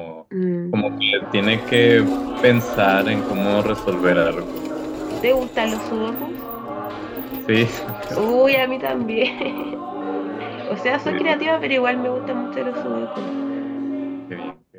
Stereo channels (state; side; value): identical; both; correlation 1.00